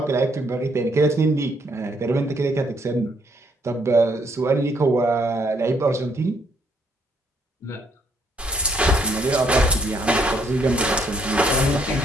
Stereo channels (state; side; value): normal; both; correlation 0.69